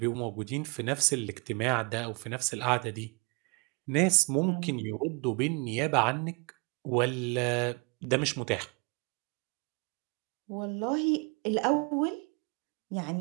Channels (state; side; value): quieter; left; 31.8 dB